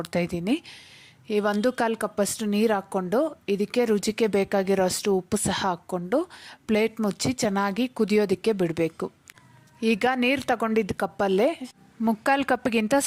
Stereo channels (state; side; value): identical; both; correlation 1.00